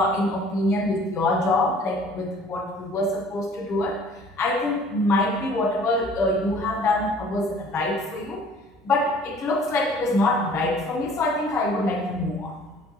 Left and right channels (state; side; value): normal; both; correlation 0.52